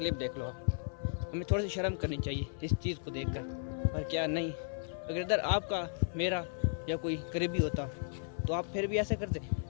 देख लो आप। हमें थोड़ी सी शर्म करनी चाहिए इस चीज़ को देखकर, और क्या नहीं। अगर इधर आपका मेरा या कोई करीबी होता तो आप फिर भी ऐसे करते,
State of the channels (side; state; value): right; silent; 54 dB below the other